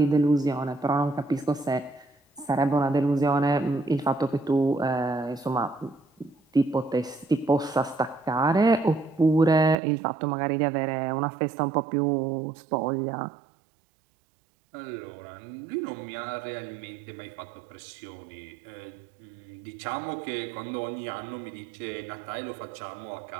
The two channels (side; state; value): left; drops out; at 9.8 s